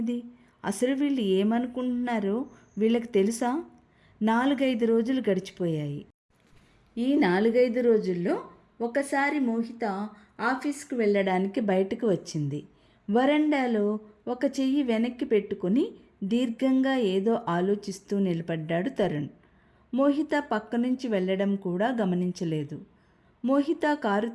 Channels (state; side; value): identical; both; correlation 1.00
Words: అసలు వీళ్ళు ఏమనుకుంటున్నారో వీళ్ళకి తెలుసా? 4-5 రోజులు గడిచిపోయాయి. ఈ 4-5 రోజుల్లో ఒకసారి మోహిత ఆఫీస్కు వెళ్ళడానికి బయటకు వచ్చింది. వరండాలో ఒక చెయ్యి వెనక్కి పెట్టుకుని దీర్ఘంగా ఏదో ఆలోచిస్తూ నిలబడ్డాడు తరుణ్. మోహిత పక్క నుంచి వెళ్ళడం కూడా గమనించలేదు. మోహిత కారు